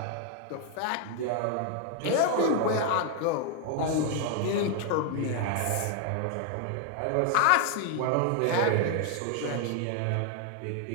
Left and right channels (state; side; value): different; both; correlation 0.00